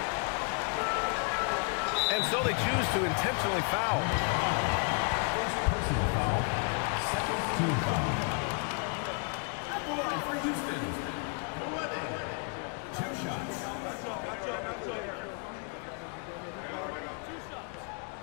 And so they choose to intentionally foul. First personal foul, second team foul. At the line for Houston, Redding. 2 shots.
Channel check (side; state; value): right; quieter; 38.7 dB